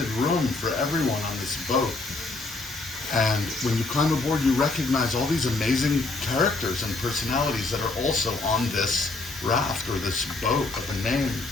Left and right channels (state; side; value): quieter; right; 3.4 dB